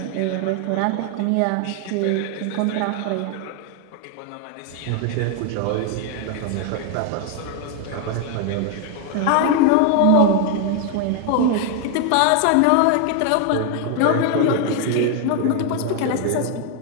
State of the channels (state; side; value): different; both; correlation 0.00